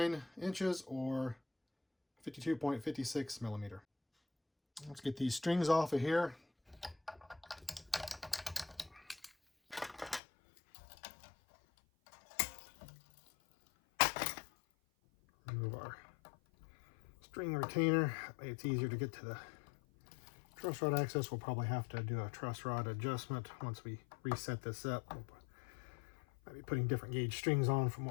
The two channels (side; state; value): right; drops out; at 10.2 s